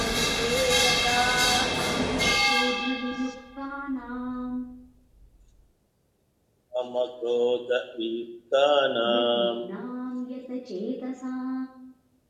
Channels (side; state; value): both; identical; correlation 1.00